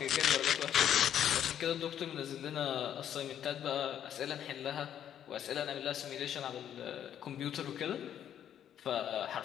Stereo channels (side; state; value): right; quieter; 10.0 dB